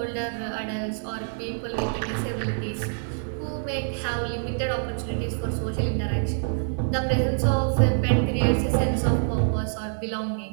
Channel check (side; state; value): left; silent; digital silence